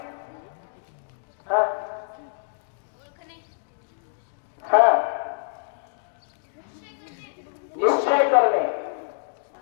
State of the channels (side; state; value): right; silent; digital silence